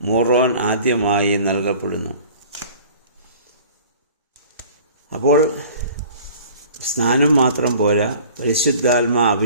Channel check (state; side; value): inverted; both; correlation -0.47